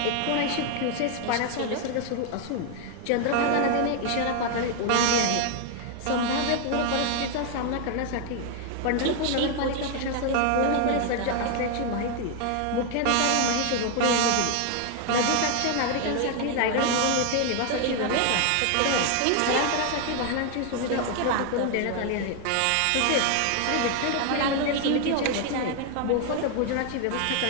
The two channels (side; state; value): both; different; correlation 0.00